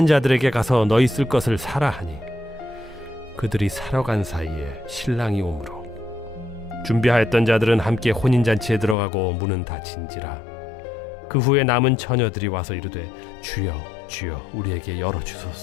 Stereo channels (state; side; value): drops out; right; at 9.0 s